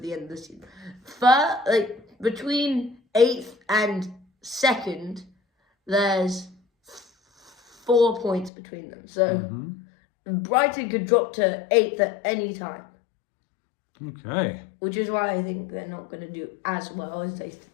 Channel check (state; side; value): drops out; right; at 8.5 s